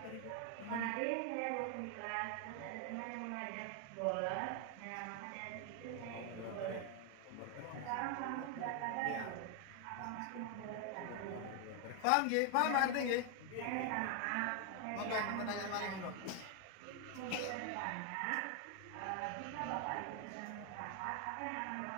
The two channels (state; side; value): different; both; correlation 0.01